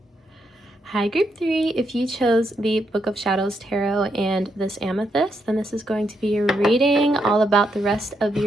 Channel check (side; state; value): both; normal; correlation 0.79